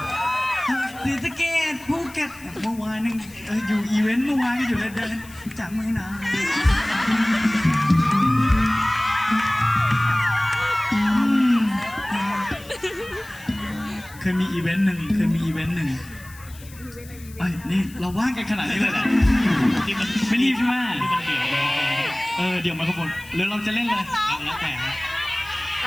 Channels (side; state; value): left; noise; hiss, 21 dB below the sound